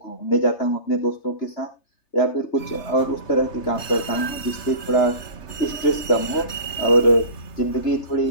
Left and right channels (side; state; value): right; late; 3.3 ms